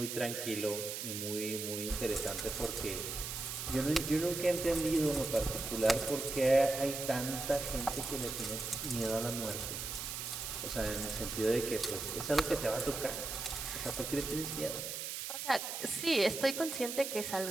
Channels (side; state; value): right; noise; hiss, 5 dB below the sound